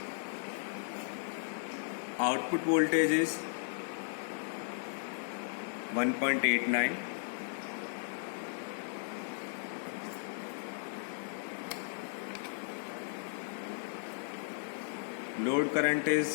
Output voltage is 1.89. Load current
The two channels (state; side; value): silent; right; digital silence